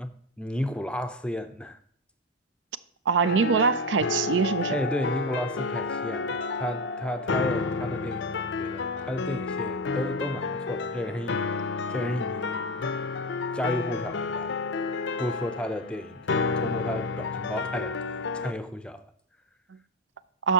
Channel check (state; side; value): normal; both; correlation 0.16